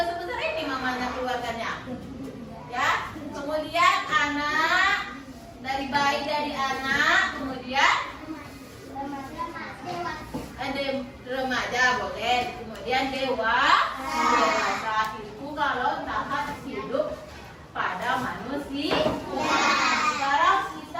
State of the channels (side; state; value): both; identical; correlation 1.00